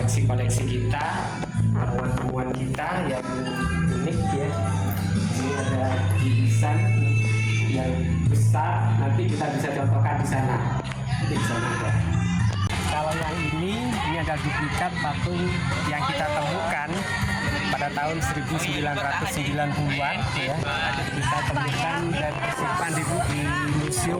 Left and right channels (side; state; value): both; identical; correlation 1.00